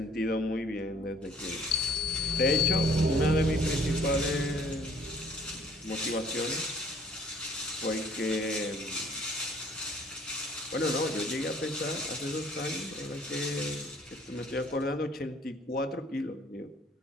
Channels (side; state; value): both; normal; correlation 0.57